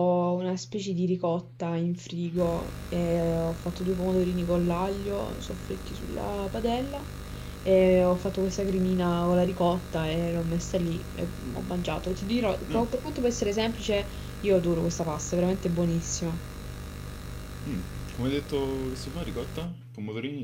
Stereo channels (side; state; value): both; identical; correlation 1.00